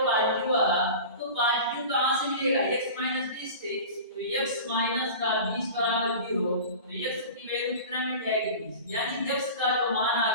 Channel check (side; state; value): both; inverted; correlation -0.35